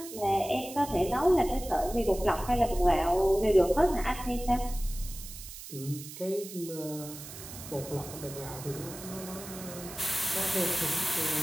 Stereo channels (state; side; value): noise; right; hiss, 13 dB below the sound